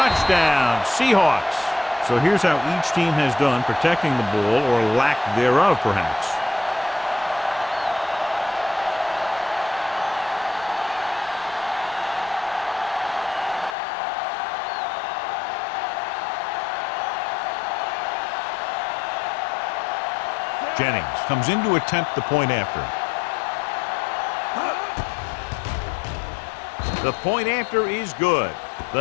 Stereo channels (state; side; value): drops out; right; at 13.8 s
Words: Seahawks. So here's how each team has done protecting the ball, or lack thereof, perhaps. Jennings comes in to attempt the point after. The point after is good.